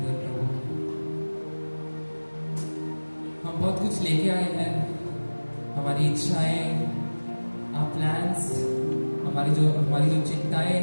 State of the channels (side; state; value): both; inverted; correlation -1.00